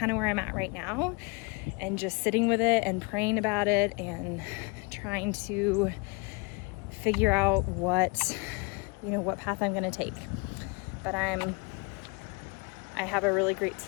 of where I'm at right now, and just sitting with it and praying about it and trying to figure out what path I'm going to take. But I have a really great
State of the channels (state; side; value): quieter; right; 29.4 dB